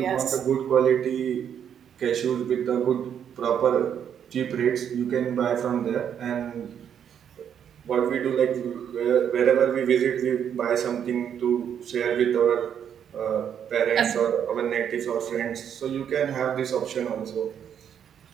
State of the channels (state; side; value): quieter; left; 8.7 dB